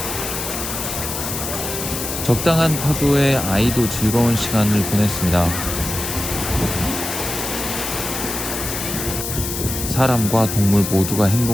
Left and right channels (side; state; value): left; noise; hiss, 5 dB below the sound